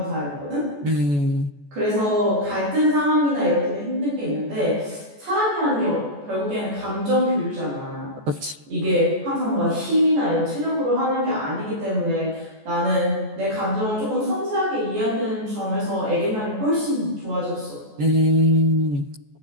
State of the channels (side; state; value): left; late; 14 ms